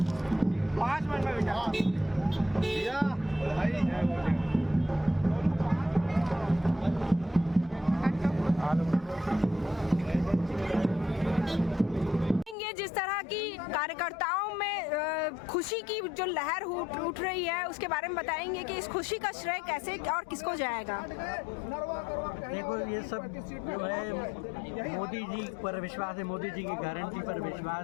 जिस तरह की कार्यकर्ताओं में खुशी की जो लहर उठ रही है उसके बारे में बताएंगे कि इस खुशी का श्रेय कैसे और किसको जाएगा? देखो, ये सब जो है मोदी जी पर विश्वास है, मोदी जी की गारंटी पर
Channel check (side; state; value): right; drops out; at 12.6 s